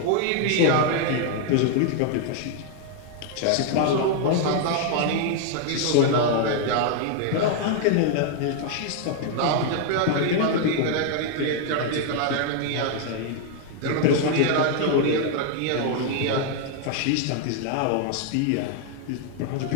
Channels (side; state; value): both; different; correlation 0.00